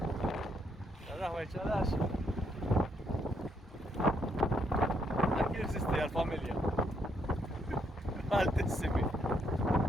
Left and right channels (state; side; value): normal; both; correlation 0.74